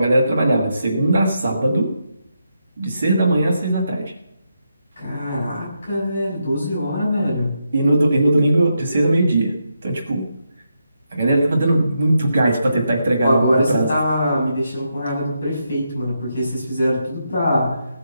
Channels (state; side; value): inverted; both; correlation -0.83